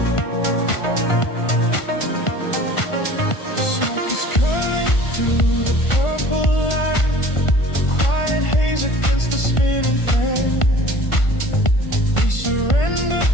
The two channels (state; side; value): late; right; 1.5 ms